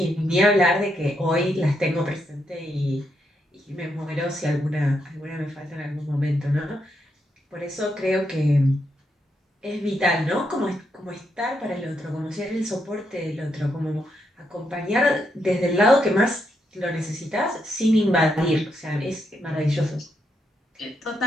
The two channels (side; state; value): both; normal; correlation 0.79